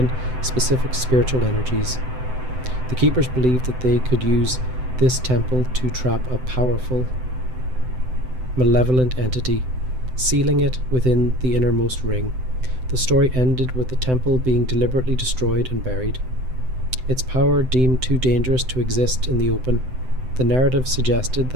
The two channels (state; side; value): late; left; 7.8 ms